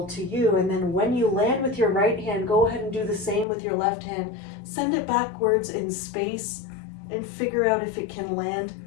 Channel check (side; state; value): right; drops out; at 3.5 s